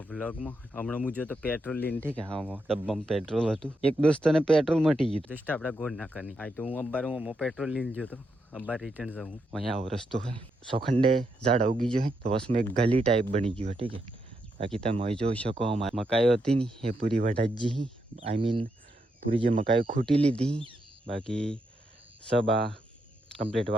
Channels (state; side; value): normal; both; correlation 0.81